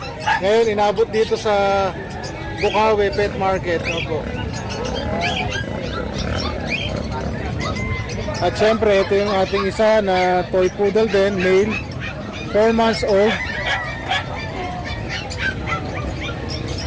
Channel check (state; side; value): identical; both; correlation 1.00